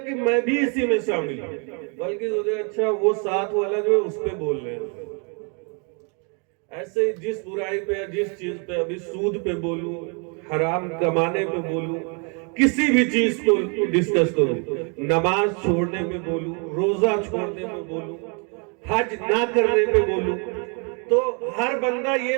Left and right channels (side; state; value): left; quieter; 36.5 dB